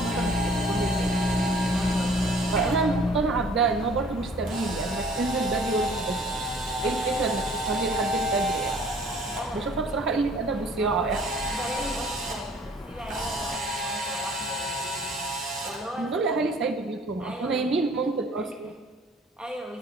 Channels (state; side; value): normal; both; correlation 0.54